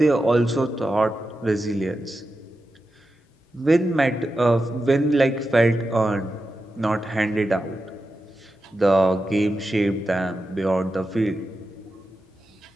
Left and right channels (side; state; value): both; normal; correlation 0.90